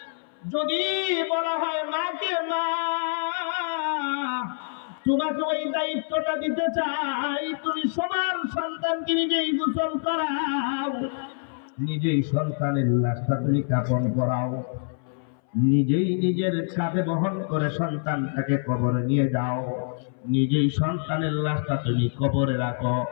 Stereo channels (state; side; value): silent; right; 60 dB below the other